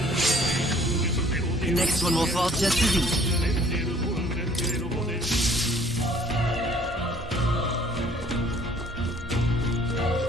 The next one will fall just as easy.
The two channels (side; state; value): both; normal; correlation 0.57